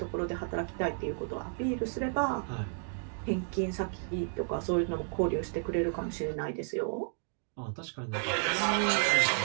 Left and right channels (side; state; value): left; silent; 56 dB below the other